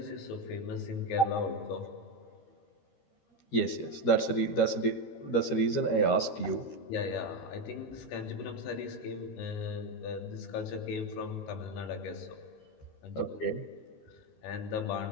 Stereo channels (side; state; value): right; late; 13 ms